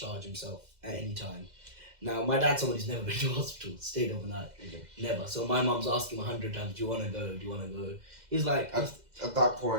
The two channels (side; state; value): left; late; 2.0 ms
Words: himself at any time. Now, my dad's someone who's never been to a hospital, stayed overnight, never. So my mum's asking 100 times, "Do you want to go? Do you want to go?" He's like, at that